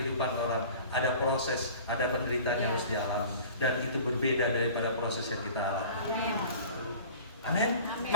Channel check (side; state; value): both; inverted; correlation -0.39